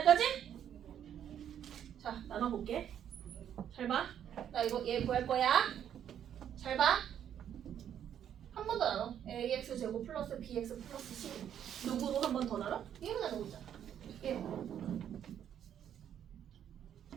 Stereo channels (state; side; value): quieter; left; 9.6 dB